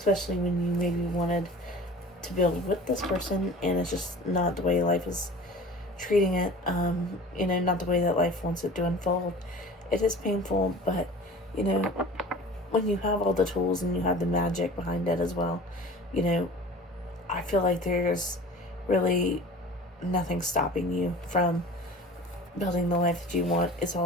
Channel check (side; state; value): both; normal; correlation 0.41